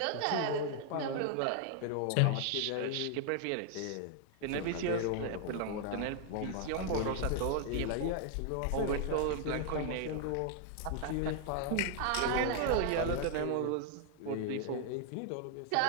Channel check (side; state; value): both; different; correlation 0.00